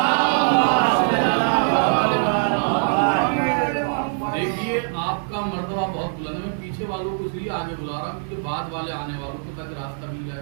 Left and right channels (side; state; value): left; silent; digital silence